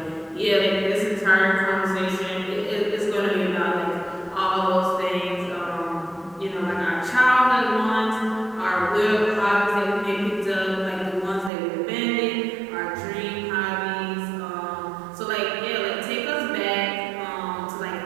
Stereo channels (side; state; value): left; drops out; at 11.5 s